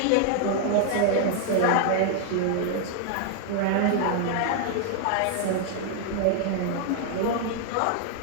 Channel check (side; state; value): both; different; correlation 0.00